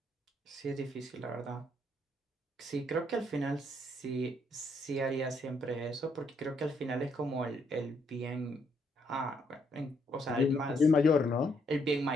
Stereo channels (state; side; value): normal; both; correlation 0.73